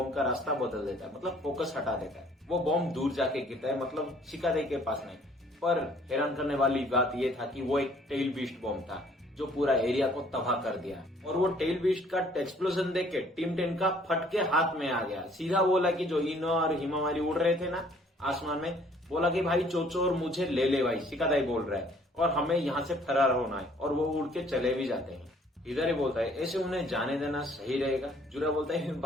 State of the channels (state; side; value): normal; both; correlation 0.59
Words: का रास्ता बदल देता है, मतलब फोकस हटा देता है। वो बॉम्ब दूर जाके गिरता है, मतलब शिकादाई के पास नहीं। पर हैरान करने वाली बात यह था कि वो एक टेल बीस्ट बॉम्ब था जो पूरा एरिया को तबाह कर दिया, और वो टेल बीस्ट का एक्सप्लोजन देख के टीम 10 का फटके हाथ में आ गया। सीधा बोला कि जो इनो और हिमावारी उड़ रहे थे ना आसमान में, बोला कि भाई चोचो और मुझे ले ले भाई, शिकादाई बोल रहा है, और हमें यहाँ से फरार होना है, और वो उड़ के चले भी जाते हैं। इधर ही बोलता है ऐसे उन्हें जाने देना सही रहेगा। जूरा बोलता है